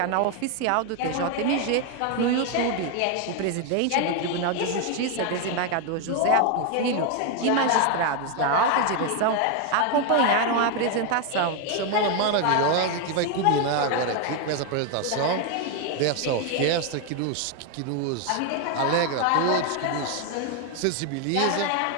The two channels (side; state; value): both; different; correlation 0.01